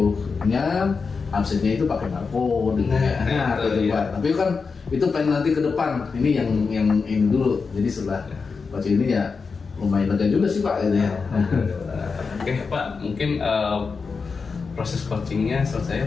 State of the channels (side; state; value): right; quieter; 4.9 dB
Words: absennya itu pakai barcode tapi kan itu pengen nanti ke depan. Ini yang ini dulu. Jadi setelah baca ini ya lumayan lega juga sih Pak gitu ya. Oke Pak, mungkin proses coachingnya